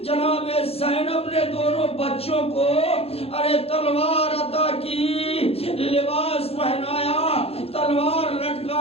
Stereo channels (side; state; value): right; late; 0.29 ms